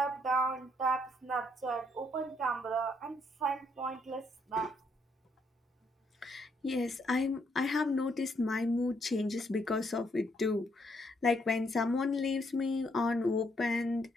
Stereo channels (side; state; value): both; normal; correlation 0.73